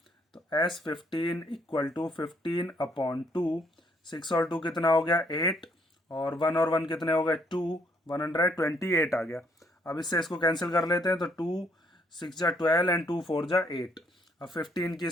तो S15 इक्वल टू 15/2, 6 और 2 कितना हो गया 8, और 1 और 1 कितने हो गए 2, 128 आ गया। अब इससे इसको कैंसिल कर लेते हैं, तो 2 6 जा 12 एंड 2 4 जा 8। अब 15 की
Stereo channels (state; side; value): normal; both; correlation 0.68